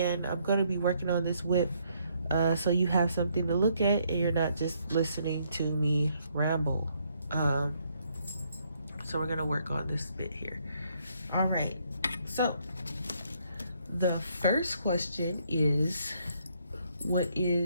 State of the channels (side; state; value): both; inverted; correlation -0.71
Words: I'm going to be working on this whip so you have something to look at and you're not just listening to me ramble. Um, so we're going to work on this bit here. All right. So the first question is, what